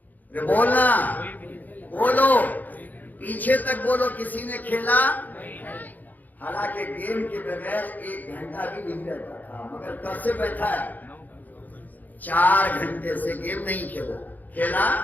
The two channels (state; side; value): late; right; 0.083 ms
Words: بولنا، بولو، پیچھے تک بولو، کسی نے کھیلا؟ حالانکہ گیم کے بغیر 1 گھنٹہ بھی نہیں رہتا تھا، مگر کب سے بیٹھا ہے؟ 4 گھنٹے سے گیم نہیں کھیلا؟